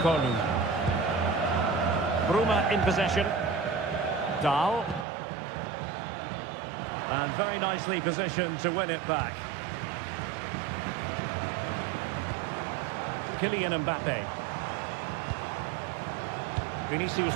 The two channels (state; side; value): drops out; left; at 5.1 s